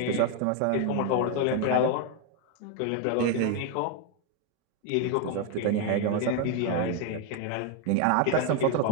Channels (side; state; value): both; different; correlation 0.01